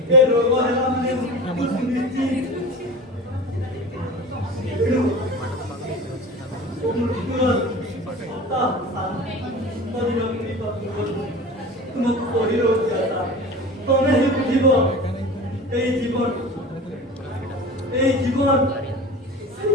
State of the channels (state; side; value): normal; both; correlation 0.35